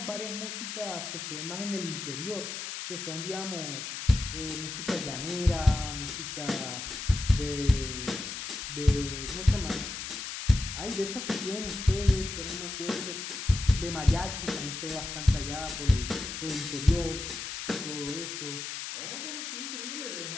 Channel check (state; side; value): noise; left; hiss, 6 dB below the sound